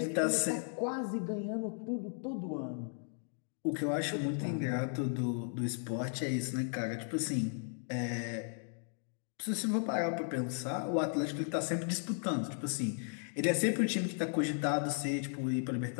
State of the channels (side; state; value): right; silent; 54 dB below the other